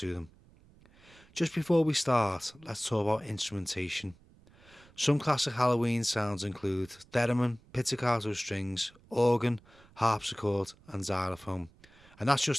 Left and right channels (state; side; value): noise; right; rumble, 27 dB below the sound